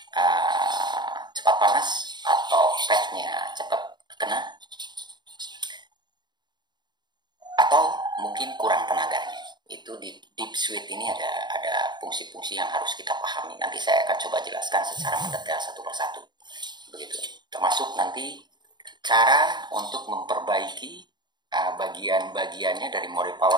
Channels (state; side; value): late; left; 0.21 ms